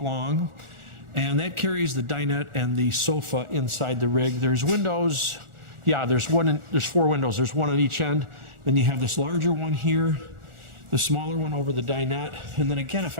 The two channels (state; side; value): late; left; 1.4 ms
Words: and that carries the dinette and the sofa inside the rig. There's windows, yeah, there's 4 windows. There's one on each end. Then you have this larger one here, the smaller one over the dinette. And then again, if